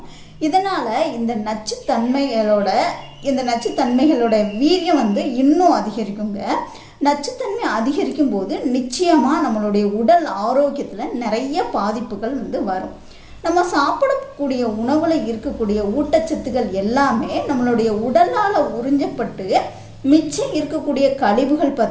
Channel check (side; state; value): both; identical; correlation 1.00